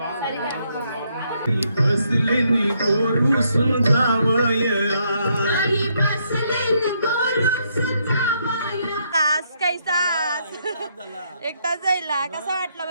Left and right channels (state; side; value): inverted; both; correlation -0.74